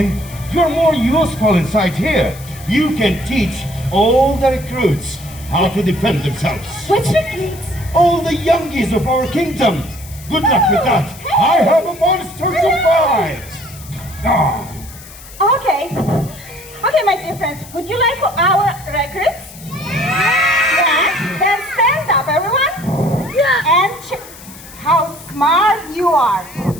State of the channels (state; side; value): noise; left; hiss, 18 dB below the sound